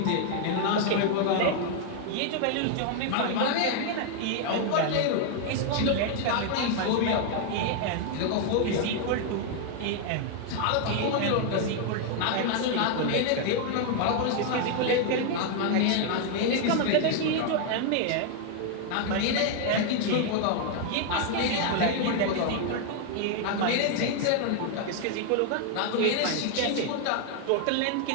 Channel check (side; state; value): both; different; correlation 0.00